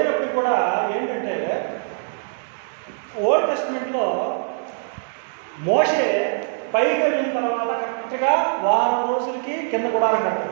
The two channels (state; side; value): silent; left; digital silence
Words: కూడా ఏంటంటే ఓల్డ్ టెస్ట్మెంట్లో మోషే పైకి వెళ్ళిన తర్వాత కరెక్ట్గా వారం రోజులకి కింద గుడారం